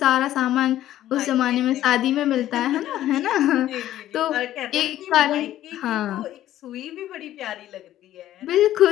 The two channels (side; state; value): right; quieter; 13.1 dB